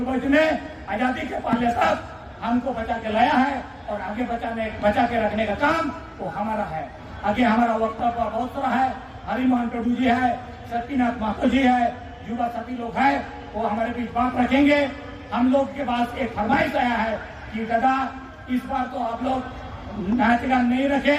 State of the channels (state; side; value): identical; both; correlation 1.00